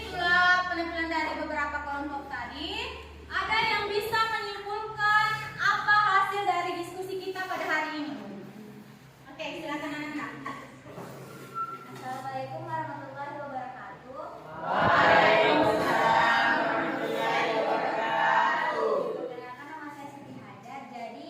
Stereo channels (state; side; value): identical; both; correlation 1.00